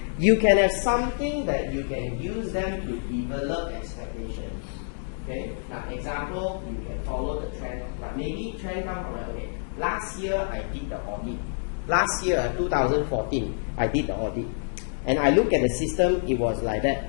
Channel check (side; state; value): right; silent; digital silence